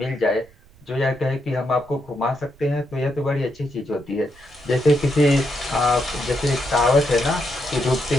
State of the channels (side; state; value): right; noise; rumble, 26 dB below the sound